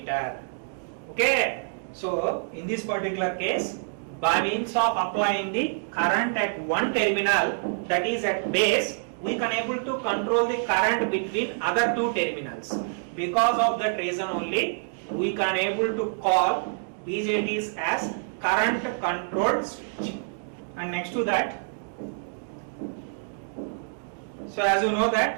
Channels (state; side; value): silent; left; digital silence